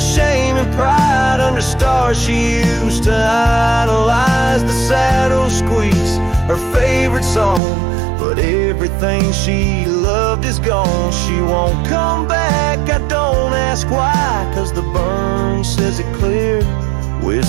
and pride under stars she used to idolize. The saddle squeaks song, but everything she loved is gone. She won't come back, I don't ask why, 'cause the burn says it clear,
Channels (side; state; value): left; drops out; at 7.6 s